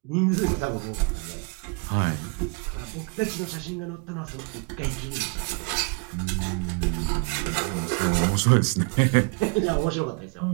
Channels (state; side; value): quieter; left; 34.3 dB